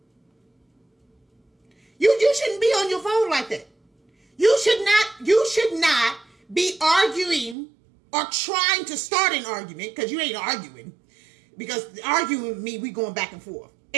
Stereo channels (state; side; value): drops out; left; at 7.6 s